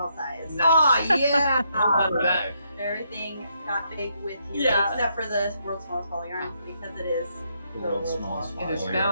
size. Nice. Oh yeah. I love that. Everything got big with you, Yeah. except for the world's smallest ball yarn because it is The the world's smallest It is ball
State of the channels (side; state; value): both; inverted; correlation -0.76